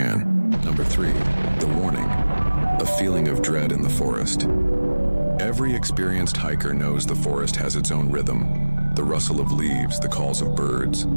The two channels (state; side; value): inverted; both; correlation -1.00